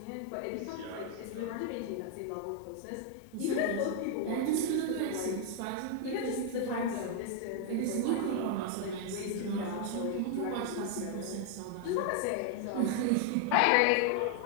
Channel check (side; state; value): both; different; correlation 0.00